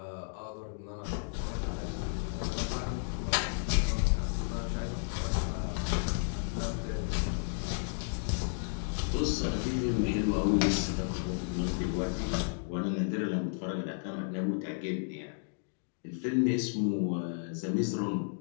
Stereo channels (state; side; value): silent; right; digital silence